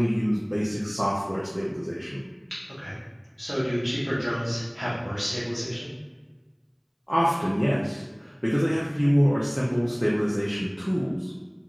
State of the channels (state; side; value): identical; both; correlation 1.00